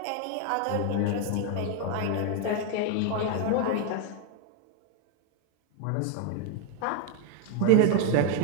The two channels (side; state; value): both; different; correlation 0.01